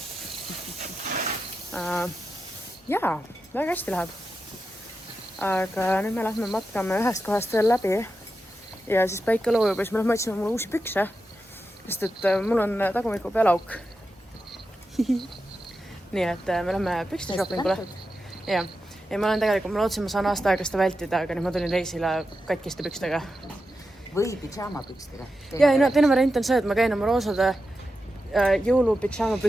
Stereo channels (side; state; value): both; normal; correlation 0.90